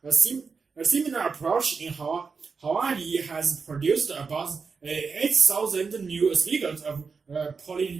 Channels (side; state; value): left; quieter; 5.1 dB